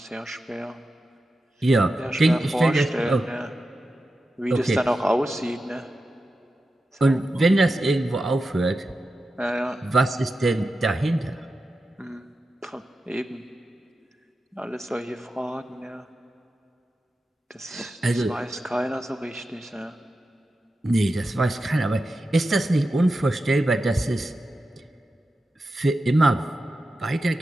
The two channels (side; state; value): both; normal; correlation 0.91